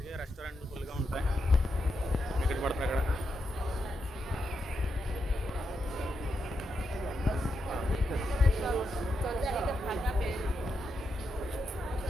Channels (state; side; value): normal; both; correlation 0.85